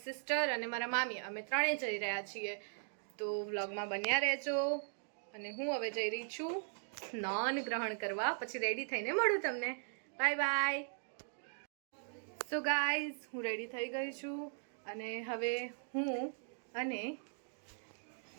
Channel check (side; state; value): left; silent; digital silence